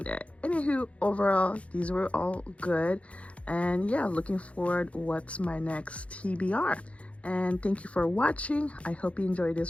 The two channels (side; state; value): right; late; 0.063 ms